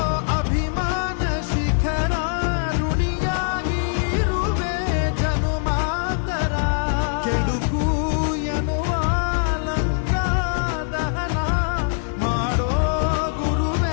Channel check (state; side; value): silent; right; digital silence